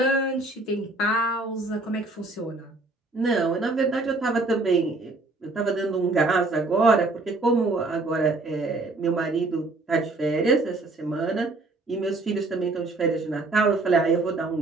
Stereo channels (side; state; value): left; quieter; 3.2 dB